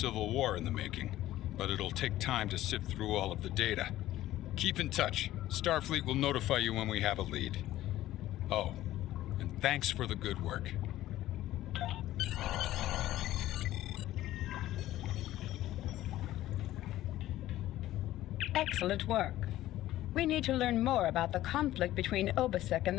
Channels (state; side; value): quieter; right; 14.6 dB